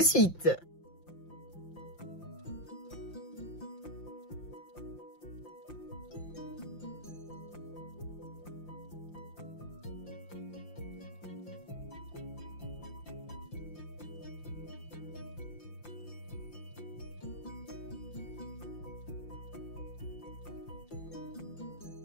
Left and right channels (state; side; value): late; right; 5.8 ms